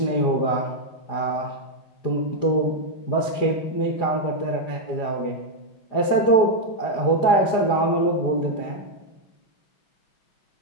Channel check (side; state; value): right; late; 5.1 ms